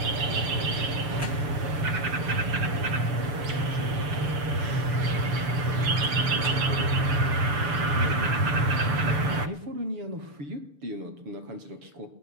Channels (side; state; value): left; late; 6.8 ms